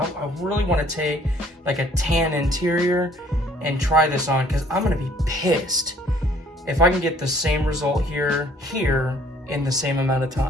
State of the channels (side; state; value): both; normal; correlation 0.58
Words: really want to take like a tan interior and try this on, because I'm going to be pissed if I can get the same result here in the same amount of